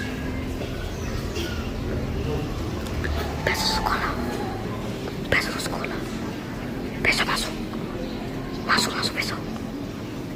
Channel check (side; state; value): both; identical; correlation 1.00